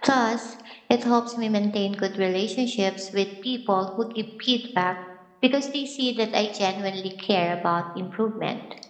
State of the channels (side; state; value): both; identical; correlation 1.00